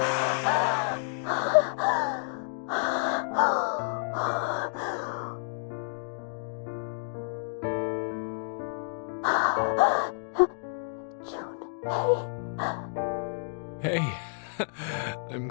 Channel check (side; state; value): right; silent; digital silence